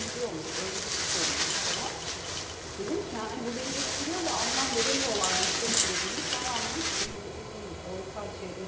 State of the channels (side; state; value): both; identical; correlation 1.00